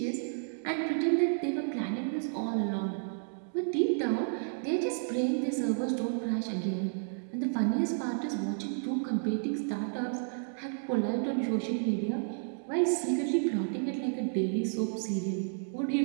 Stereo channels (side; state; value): left; silent; digital silence